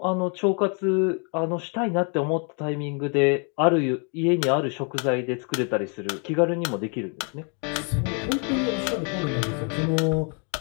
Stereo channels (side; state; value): right; quieter; 38.0 dB